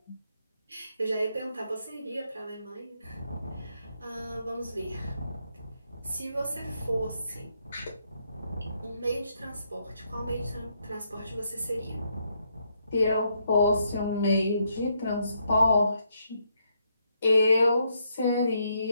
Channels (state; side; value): inverted; both; correlation -0.76